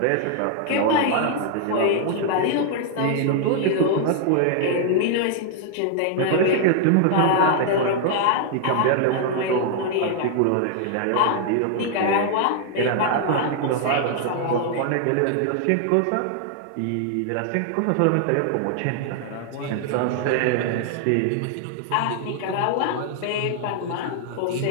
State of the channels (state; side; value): different; both; correlation 0.00